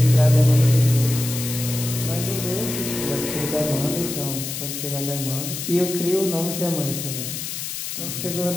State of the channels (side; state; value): left; noise; hiss, 6 dB below the sound